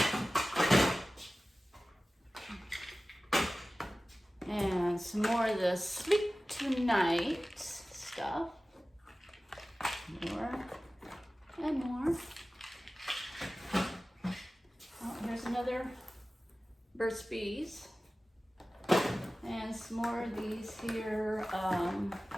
And some more of the Sleep Tonight stuff. More and more. Oh, here's another Burt's Bees. And some more of these here.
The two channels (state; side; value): normal; both; correlation 0.96